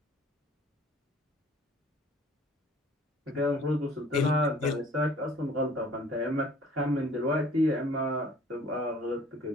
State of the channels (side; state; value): both; normal; correlation 0.52